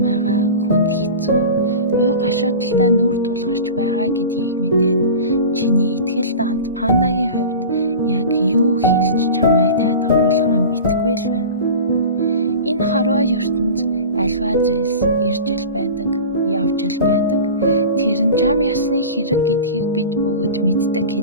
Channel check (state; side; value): inverted; both; correlation -0.33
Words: хүнд хэцүү, уй гашуудалтай нүр тулгарч байгаа гэдгийг мэдээд чиний итгэл дант пандагийн хувьд яг юу хэлж чамайг тайлгаруулахаа мэдэхгүй л байна. Энэ хорвоо ертөнд альва зүйлс ирж л байдаг, явж л байдаг. Тэр нь чам ясны хэрэг гэдгийг бид бүгд мэддэг